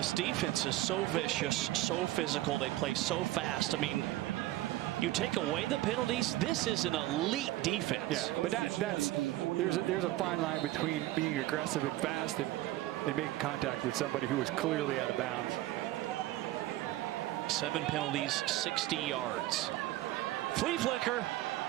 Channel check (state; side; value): quieter; left; 16.0 dB